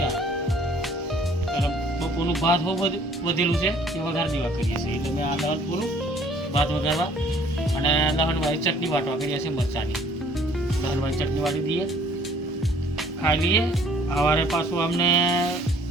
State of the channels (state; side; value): normal; both; correlation 0.57